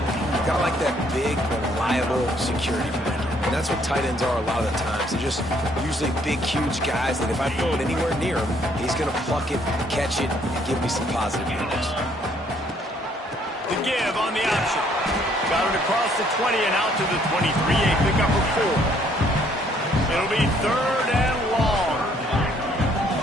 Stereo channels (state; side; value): normal; both; correlation 0.65